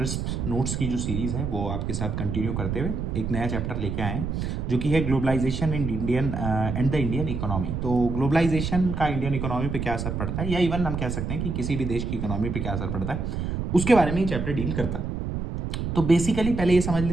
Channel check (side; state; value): right; noise; rumble, 3 dB below the sound